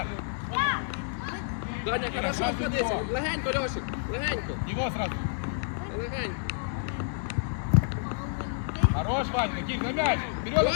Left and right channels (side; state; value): right; silent; digital silence